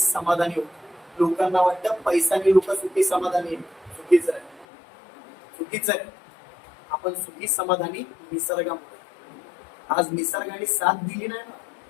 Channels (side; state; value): right; drops out; at 4.7 s